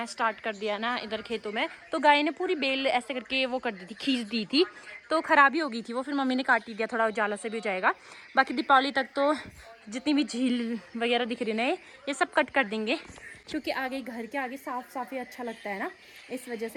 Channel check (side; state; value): both; identical; correlation 1.00